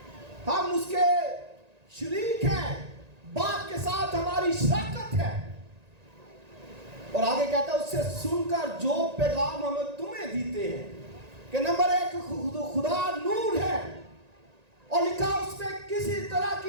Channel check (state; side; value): late; left; 1.9 ms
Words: ہم اس کے شریک ہیں, باپ کے ساتھ ہماری شراکت ہے. اور آگے کہتا ہے اس سے سن کر جو پیغام ہم تمہیں دیتے ہیں کہ نمبر 1 خدا نور ہے, اور لکھا اس میں کسی طرح